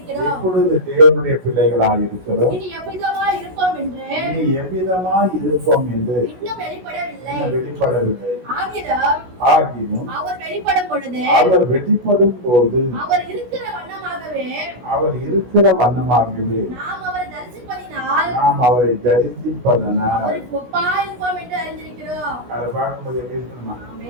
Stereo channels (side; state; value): left; late; 16 ms